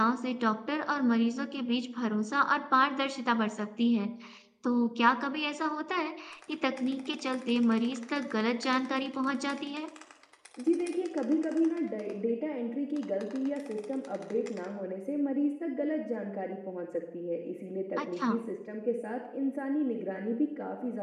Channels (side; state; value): both; identical; correlation 1.00